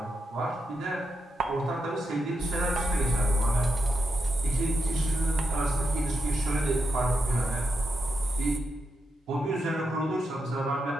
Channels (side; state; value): both; normal; correlation 0.85